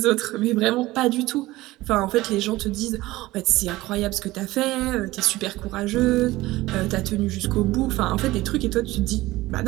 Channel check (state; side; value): quieter; left; 18.3 dB